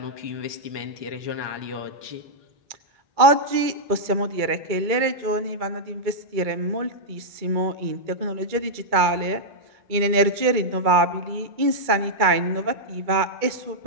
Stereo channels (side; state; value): left; late; 2.2 ms